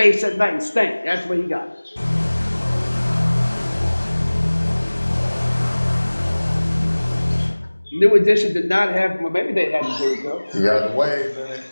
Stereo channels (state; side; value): inverted; both; correlation -1.00